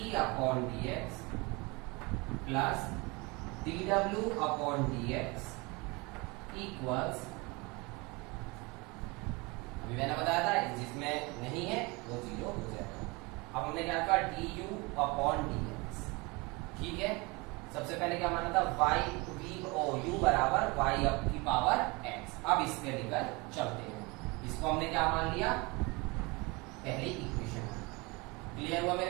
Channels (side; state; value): left; quieter; 26.1 dB